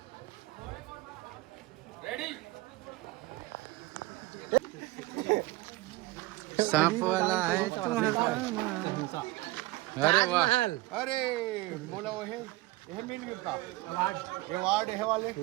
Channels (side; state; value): left; quieter; 19.5 dB